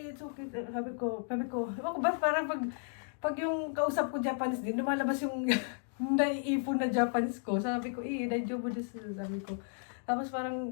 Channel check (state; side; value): silent; right; 55 dB below the other